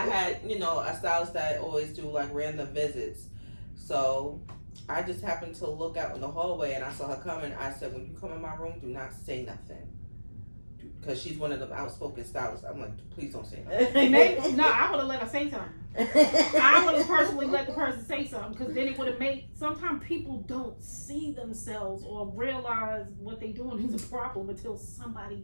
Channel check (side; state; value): both; inverted; correlation -1.00